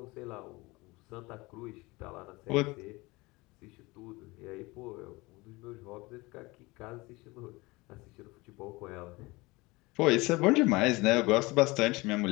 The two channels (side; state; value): right; quieter; 23.0 dB